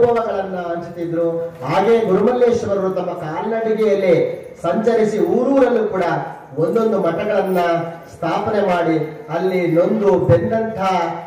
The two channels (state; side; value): identical; both; correlation 1.00